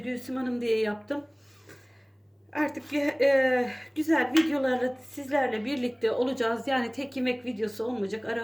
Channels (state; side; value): identical; both; correlation 1.00